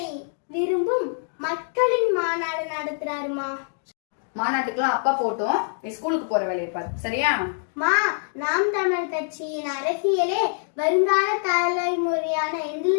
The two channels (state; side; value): silent; right; digital silence